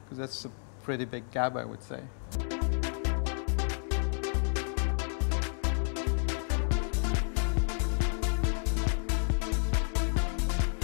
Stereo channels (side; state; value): right; silent; digital silence